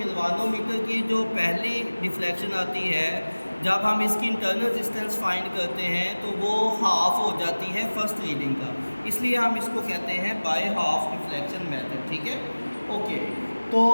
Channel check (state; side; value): inverted; both; correlation -1.00